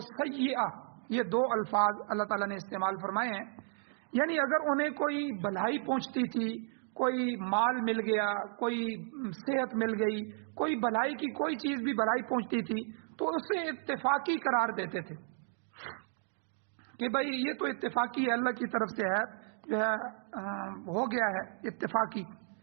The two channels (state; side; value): silent; left; digital silence